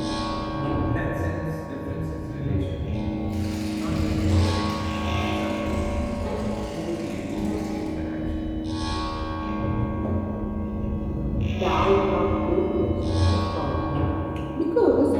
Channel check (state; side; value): identical; both; correlation 1.00